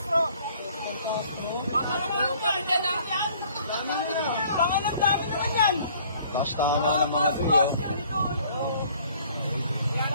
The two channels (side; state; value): both; inverted; correlation -0.57